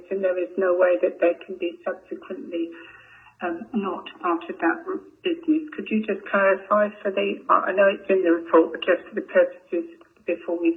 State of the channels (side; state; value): both; identical; correlation 1.00